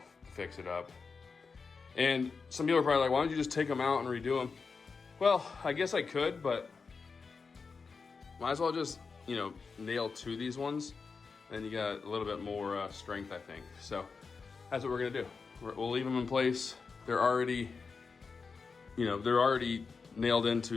fix it up. And some people are probably like, why don't you just take them out and redo them? Well, I guess I could, but might as well just, you know, nail to these ones. Then you got a little bit more strength, I think. So that's what we're gonna do. We'll leave them in place. They're already, you know, they're already nailed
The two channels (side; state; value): right; quieter; 4.9 dB